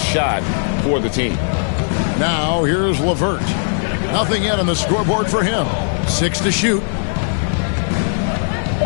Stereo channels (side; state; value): right; silent; 58 dB below the other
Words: shot for the team. Now here's LeVert. Nothing yet on the scoreboard for him. 6 to shoot.